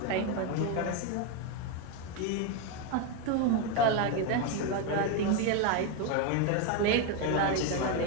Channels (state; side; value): different; both; correlation 0.02